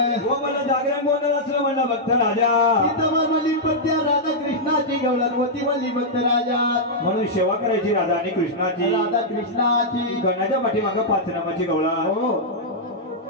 हो मला जागरण गोंधळ असलं म्हणला भक्त राजा तिथं म्हणली पत्या राधा कृष्णाची गवळण होती म्हणली भक्त राजा म्हणून सेवा करायची राधा आणि कृष्णाची राधा कृष्णाची गणाच्या पाठीमागे 5 नामाची गवळा हो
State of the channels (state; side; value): normal; both; correlation -0.08